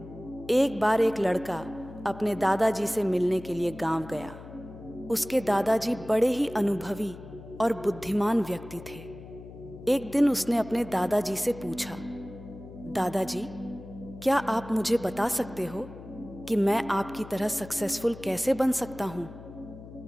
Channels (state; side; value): noise; left; hum, 15 dB below the sound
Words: एक बार एक लड़का अपने दादाजी से मिलने के लिए गांव गया। उसके दादाजी बड़े ही अनुभवी और बुद्धिमान व्यक्ति थे। एक दिन उसने अपने दादाजी से पूछा, दादाजी, क्या आप मुझे बता सकते हो कि मैं आपकी तरह सक्सेसफुल कैसे बन सकता हूं?